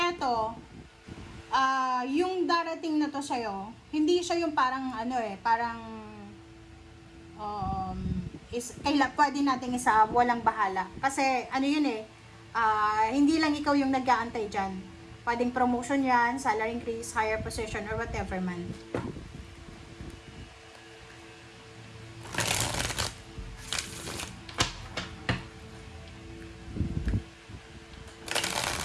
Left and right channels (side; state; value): both; identical; correlation 1.00